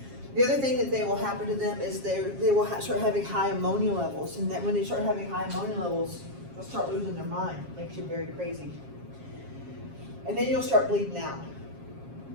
The other thing that they will happen to them is they will start having high ammonia levels, and that when they start having high ammonia levels, they'll start losing their mind. Makes you very crazy. And then you'll start bleeding out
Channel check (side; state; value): left; late; 7.4 ms